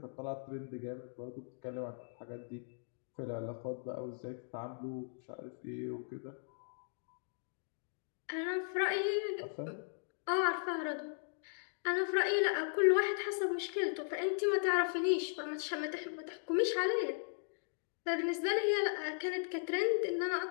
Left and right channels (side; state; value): right; silent; digital silence